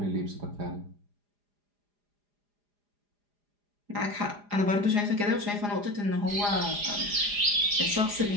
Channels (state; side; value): late; left; 4.9 ms